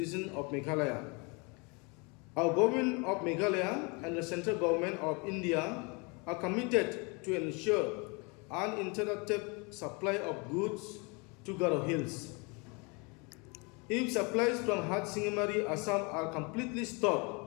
of Meghalaya. Our government of Meghalaya and the central government of India are committed to ensure uninterrupted supply of goods to Garo Hills. If supplies from Sengbhalang, Assam are completely stopped,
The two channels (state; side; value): quieter; right; 30.4 dB